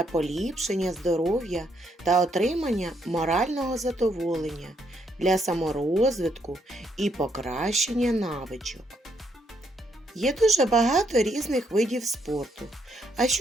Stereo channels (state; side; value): normal; both; correlation 0.74